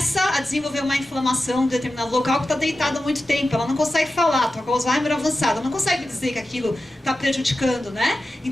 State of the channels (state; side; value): normal; both; correlation 0.93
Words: a desenvolver uma inflamação em determinado local que está deitada há muito tempo, ela não consegue falar, está com Alzheimer avançado, ela não consegue dizer que aquilo está prejudicando, né?